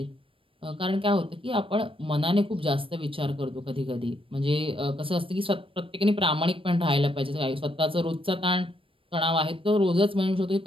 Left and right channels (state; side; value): late; left; 0.26 ms